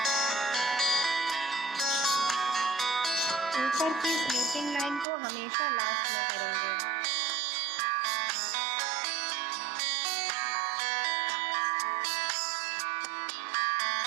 ऊपर की स्लीपिंग लाइन को हमेशा लास्ट में करेंगे।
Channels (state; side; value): drops out; left; at 5.1 s